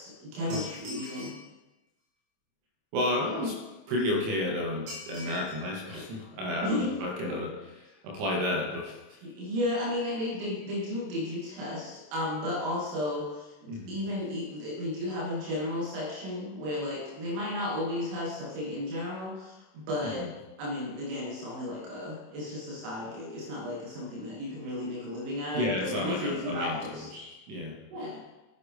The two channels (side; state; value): left; late; 27 ms